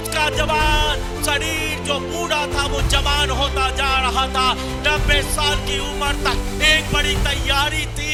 जवान शरीर जो बूढ़ा था वो जवान होता जा रहा था। 90 साल की उम्र तक एक बड़ी तैयारी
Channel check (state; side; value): identical; both; correlation 1.00